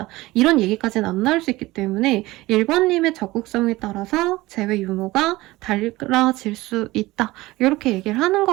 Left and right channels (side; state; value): left; quieter; 19.2 dB